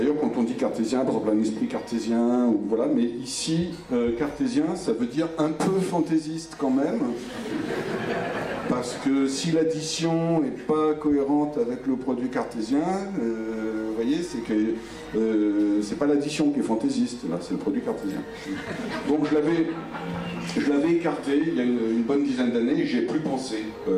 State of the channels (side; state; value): both; identical; correlation 1.00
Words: quand on dit cartésien, par exemple un esprit cartésien, ou voilà, mais ici, cartésien, ça veut dire un peu fantaisiste quand même, parce que si l'addition n'est pas cohérente avec le produit cartésien, vous voyez, c'est que c'est pas l'addition qui est fantaisiste, là, c'est le produit cartésien. Donc je je l'avais écarté il y a une bonne dizaine d'années et j'ai plus pensé